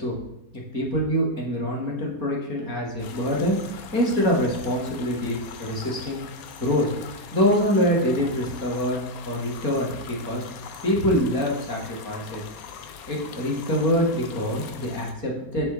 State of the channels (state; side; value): late; left; 4.3 ms